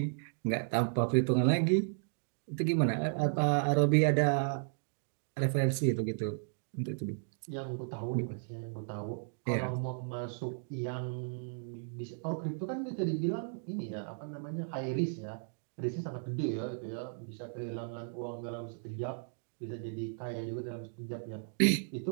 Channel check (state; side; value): silent; left; digital silence